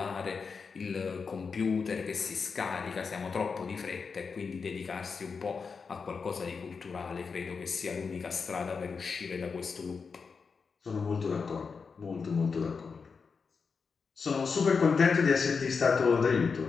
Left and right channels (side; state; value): right; quieter; 5.3 dB